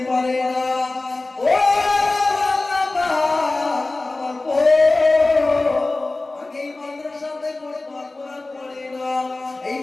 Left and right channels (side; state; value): right; quieter; 3.1 dB